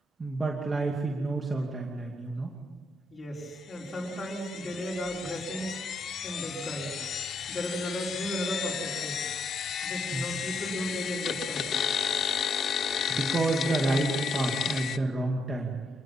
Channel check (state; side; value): normal; both; correlation 0.76